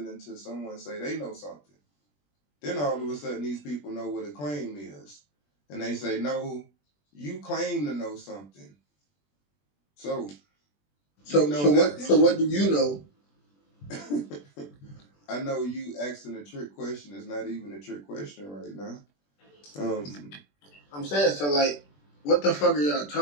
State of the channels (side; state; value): right; late; 21 ms